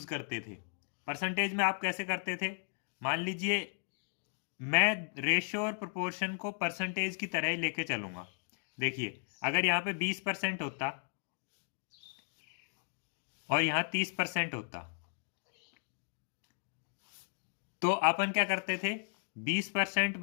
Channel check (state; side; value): silent; right; digital silence